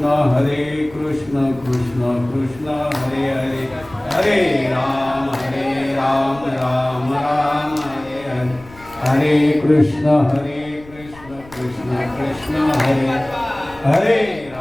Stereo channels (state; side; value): noise; left; rumble, 22 dB below the sound